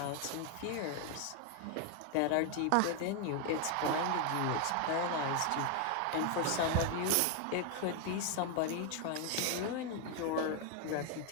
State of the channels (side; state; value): both; different; correlation 0.01